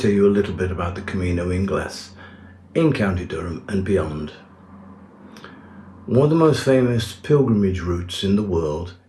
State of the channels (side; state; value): both; identical; correlation 1.00